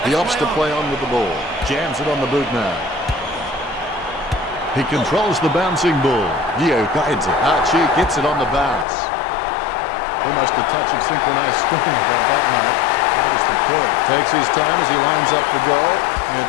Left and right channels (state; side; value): drops out; right; at 8.8 s